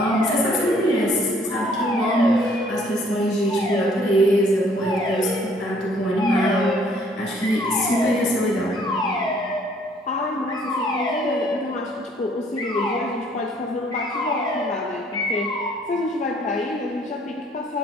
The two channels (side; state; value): both; normal; correlation 0.61